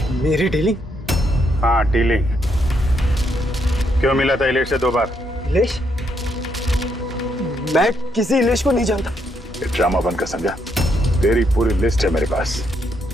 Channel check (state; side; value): normal; both; correlation 0.76